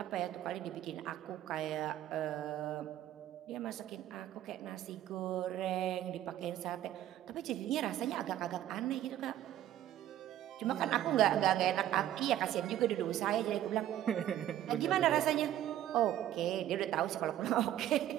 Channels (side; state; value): left; quieter; 12.3 dB